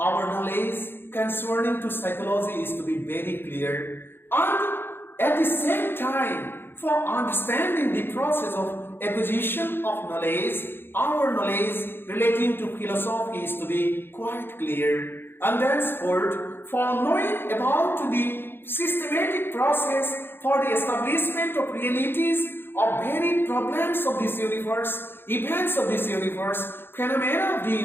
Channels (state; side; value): late; right; 0.10 ms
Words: knowledge concerning to psychology is to be very clear, and at the same time for understanding the process of acquisition of knowledge, our knowledge relating to philosophy is to be quite clear, and thenceforth for knowing about the systematic process for the establishment of realities of varied problems of this universe, events of this universe, phenomena of the